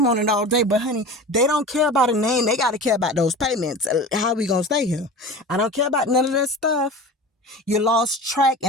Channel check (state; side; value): normal; both; correlation 0.34